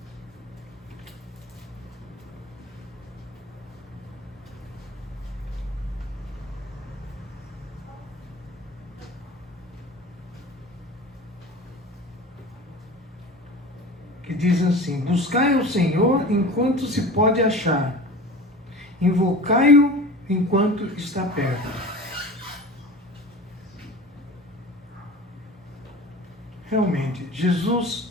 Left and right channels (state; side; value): normal; both; correlation 0.36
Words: Que diz assim: buscai o Senhor enquanto se pode achar, invocai-o enquanto está perto. Realmente,